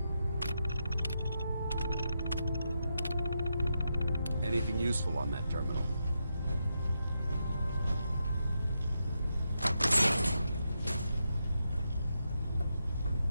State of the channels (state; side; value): inverted; both; correlation -0.84